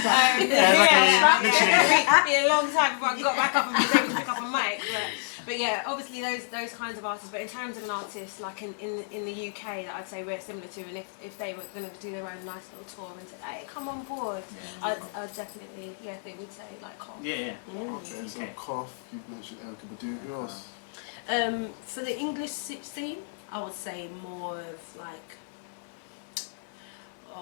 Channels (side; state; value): right; silent; digital silence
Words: It'd be a long time before I got back up and was able to pick up a mic. But yeah, obviously those kinds of artists. But in terms of an artist like in the UK that I'd say we're similar to, and if they were going to do their own nice little tour and say, hey, come on board, I'd definitely think we'd say like Cough. Okay, so Cough. You mentioned Erica Badu. Who else? For the English scene, I would say more of like